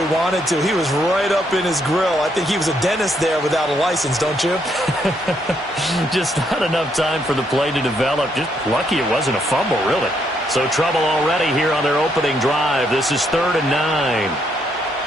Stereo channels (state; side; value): normal; both; correlation 0.74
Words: wanted to. He was right up in his grill. I think he was a dentist there without a license, don't you? Just not enough time for the play to develop. Just lucky it wasn't a fumble, really. So trouble already here on their opening drive. This is 3rd and 9.